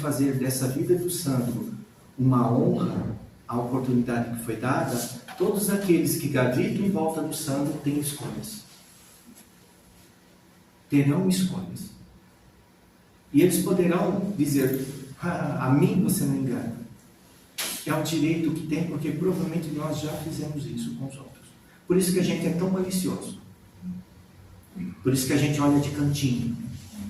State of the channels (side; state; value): both; identical; correlation 1.00